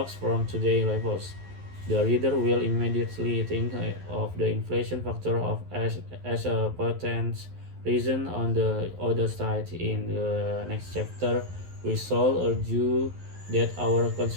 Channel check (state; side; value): late; left; 11 ms